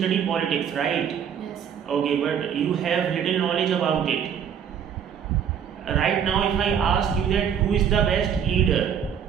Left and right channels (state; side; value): quieter; left; 8.2 dB